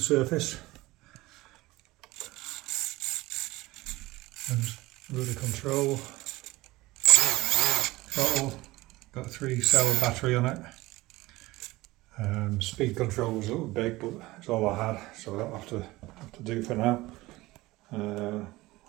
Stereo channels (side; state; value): left; quieter; 19.5 dB